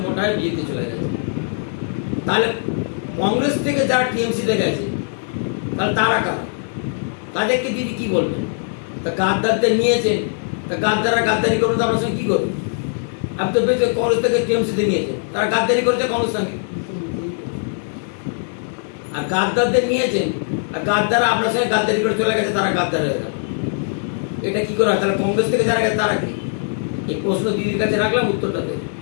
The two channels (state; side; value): silent; right; 62 dB below the other